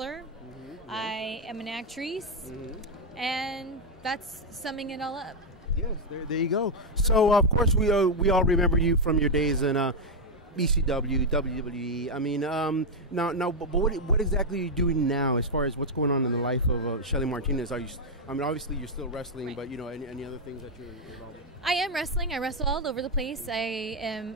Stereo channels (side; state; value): both; normal; correlation 0.01